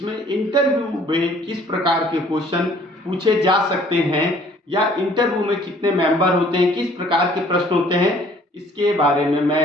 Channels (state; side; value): normal; both; correlation 0.56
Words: इंटरव्यू में किस प्रकार के क्वेश्चन पूछे जा सकते हैं या इंटरव्यू में कितने मेंबर होते हैं, किस प्रकार के प्रश्न होते हैं, इसके बारे में मैं